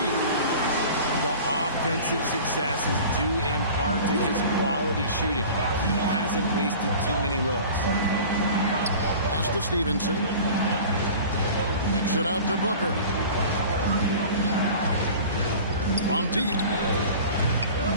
The offensive success is due in part to his quality shooting. He hasn't wasted too many looks. Pass to Stevenson. Kicks it out to Booker. From deep.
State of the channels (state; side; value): inverted; both; correlation -0.41